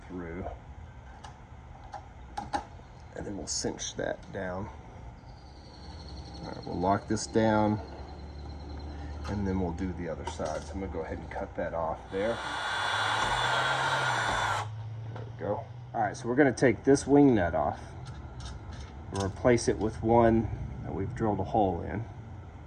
through, and then we'll cinch that down. All right, we'll lock this down, and then we'll do the other side. So I'm gonna go ahead and cut that off there. There we go. All right, so we're gonna take this wing nut off and replace it with one that we've drilled a hole in.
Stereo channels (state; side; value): identical; both; correlation 1.00